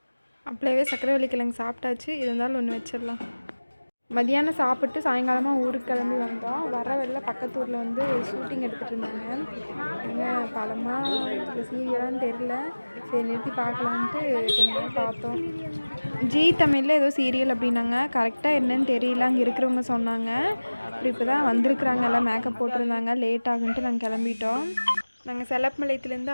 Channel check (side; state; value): both; inverted; correlation -1.00